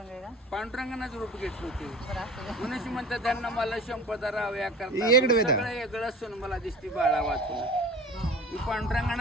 आहे का पांडुरंगानंच रूप घेतलं होते बरं असं का? मनुष्य म्हणतात त्यांना मला संपदा राव्या करता येडं वेडं. सगळं वेगळं असून मला दिसती बाळा वाचून मी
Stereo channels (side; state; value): both; normal; correlation 0.39